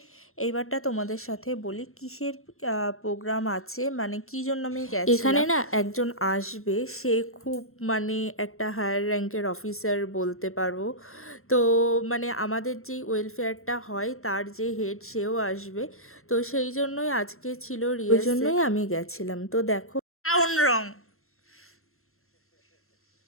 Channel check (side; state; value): right; late; 0.62 ms